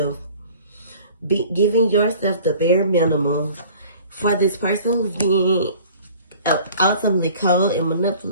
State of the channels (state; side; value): inverted; both; correlation -0.48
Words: giving yourself the bare minimum for this person who's being ultimately cold and